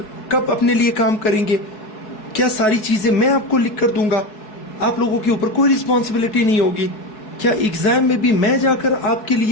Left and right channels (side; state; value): right; late; 4.7 ms